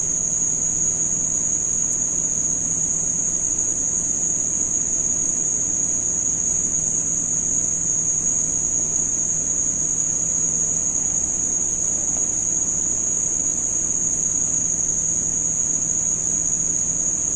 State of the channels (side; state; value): right; noise; hum, 16 dB below the sound